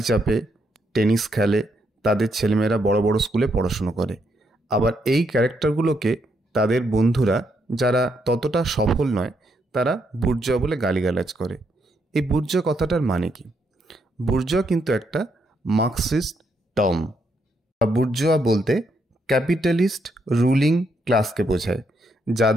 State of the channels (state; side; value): normal; both; correlation 0.77